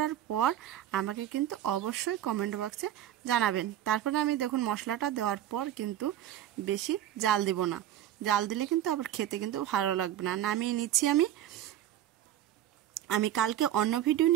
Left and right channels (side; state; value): left; quieter; 11.9 dB